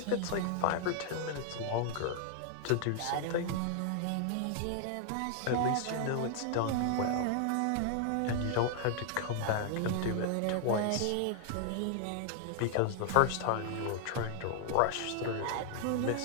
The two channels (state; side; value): different; both; correlation 0.00